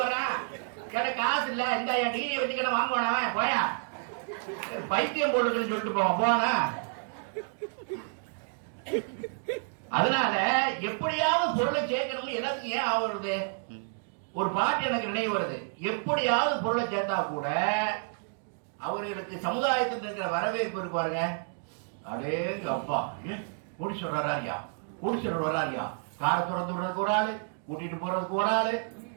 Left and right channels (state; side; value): silent; left; 58 dB below the other